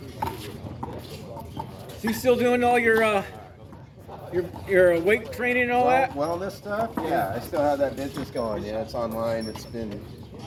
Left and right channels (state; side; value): identical; both; correlation 1.00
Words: So you still doing all your weight training and all that? Wellness stuff? Yeah, I still have that business going. Yeah, it's online. It's been,